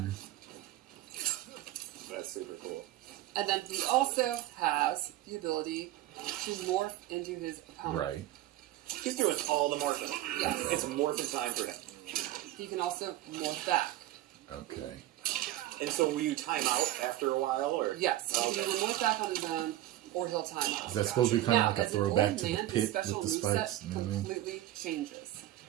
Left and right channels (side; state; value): left; quieter; 14.8 dB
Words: That's super cool. And then he also has the ability to morph into his opponent. Right. He's doing all the morphing. Yes. It's morphing time for him. He can also morph back. Okay. And so will you time out after a while, or? Yes. He Okay. can either morph back on his own, or he'll time out. Is that supposed to be kind of Now, like a as an throwback old to the man, his pit special with the moveset spikes? You know what I mean? completely changes.